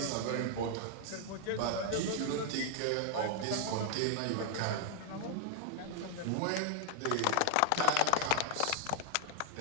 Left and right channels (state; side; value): different; both; correlation 0.00